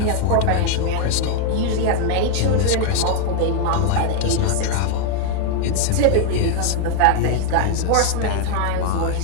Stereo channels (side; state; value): both; different; correlation 0.00